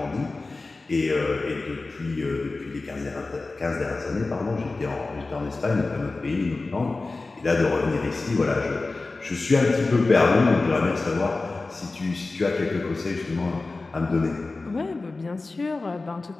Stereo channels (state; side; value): quieter; right; 3.5 dB